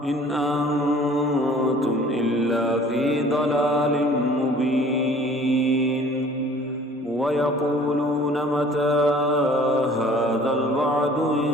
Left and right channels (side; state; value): both; normal; correlation 0.51